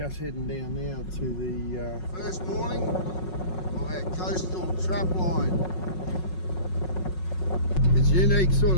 heading down now to the first morning of our coastal trapline. It's a unique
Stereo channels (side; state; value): right; late; 5.5 ms